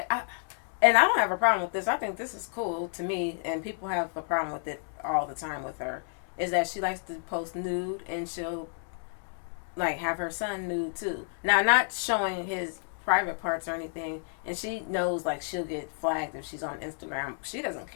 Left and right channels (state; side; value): silent; right; digital silence